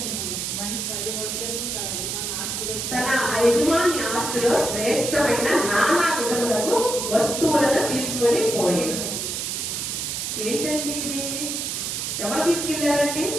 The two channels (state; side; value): noise; right; hiss, 3 dB below the sound